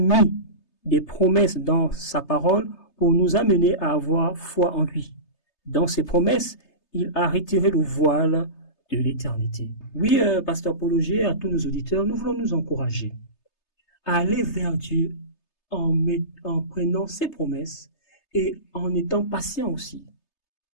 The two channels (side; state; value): right; late; 3.3 ms